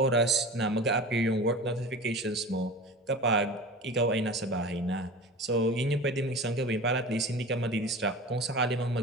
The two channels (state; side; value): normal; both; correlation 0.34